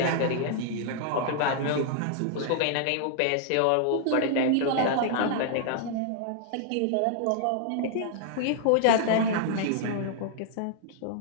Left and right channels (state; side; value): different; both; correlation -0.01